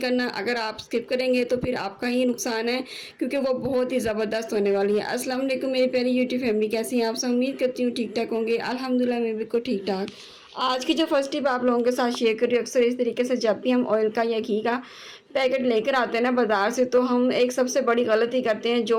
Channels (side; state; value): both; identical; correlation 1.00